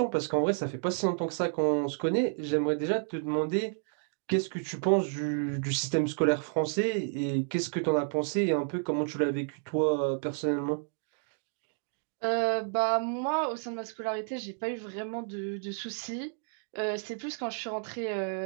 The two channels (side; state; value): left; silent; digital silence